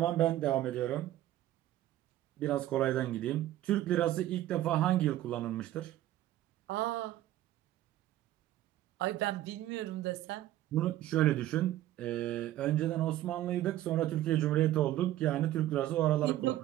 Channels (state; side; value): quieter; left; 14.0 dB